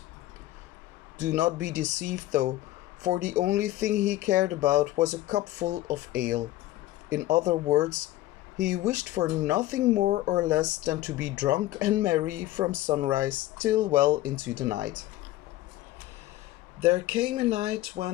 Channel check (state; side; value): quieter; right; 15.8 dB